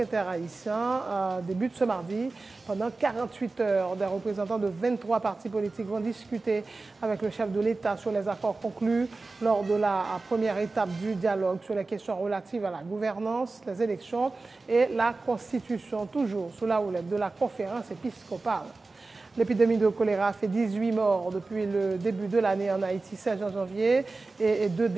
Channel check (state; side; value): quieter; left; 3.6 dB